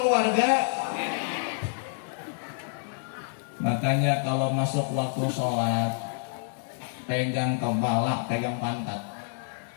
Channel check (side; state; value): right; silent; 59 dB below the other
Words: Makanya kalau masuk waktu sholat, pegang kepala, pegang pantat.